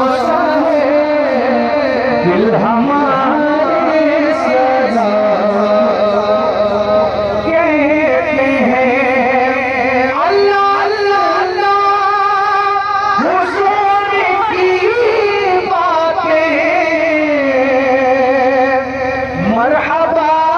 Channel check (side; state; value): both; identical; correlation 1.00